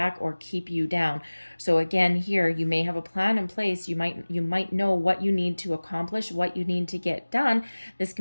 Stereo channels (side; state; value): both; inverted; correlation -1.00